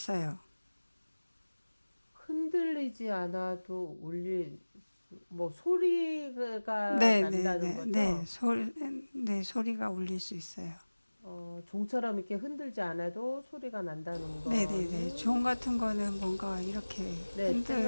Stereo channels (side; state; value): both; inverted; correlation -1.00